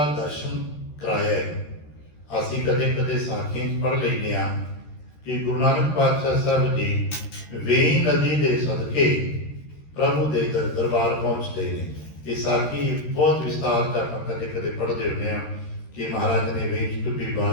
ਦਰਸ਼ਨ ਕਰਾਇਆ ਹੈ। ਅਸੀਂ ਕਦੇ ਕਦੇ ਸਾਖੀਆਂ 'ਚ ਪੜ੍ਹ ਲੈਂਦੇ ਹਾਂ ਕਿ ਗੁਰੂ ਨਾਨਕ ਪਾਤਸ਼ਾਹ ਸਾਹਿਬ ਜੀ ਵੇਈ ਨਦੀ ਦੇ ਸਦਕੇ ਪ੍ਰਭੂ ਦੇ ਦਰਬਾਰ ਪਹੁੰਚਦੇ ਨੇ। ਇਹ ਸਾਖੀ ਬਹੁਤ ਵਿਸਤਾਰ ਤੱਕ ਆਪਾਂ ਕਦੇ ਕਦੇ ਪੜ੍ਹਦੇ ਹੁੰਦੇ ਹਾਂ ਕਿ ਮਹਾਰਾਜ ਨੇ ਵੇਈ 'ਚ ਡੁੱਬੀ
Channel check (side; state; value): right; late; 13 ms